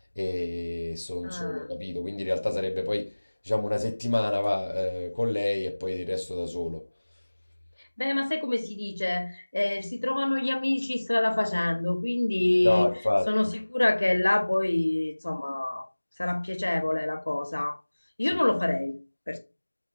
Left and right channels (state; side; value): inverted; both; correlation -1.00